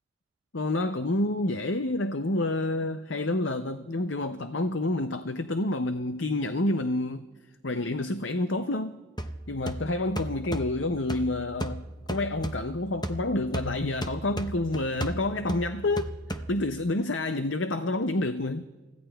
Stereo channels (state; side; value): normal; both; correlation 0.37